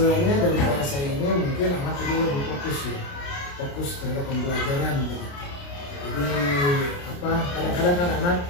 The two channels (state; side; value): late; right; 29 ms